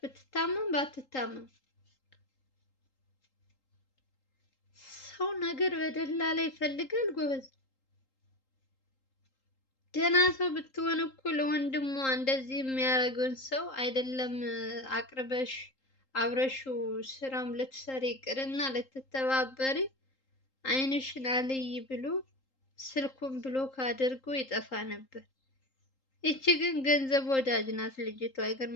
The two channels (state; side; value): late; right; 3.8 ms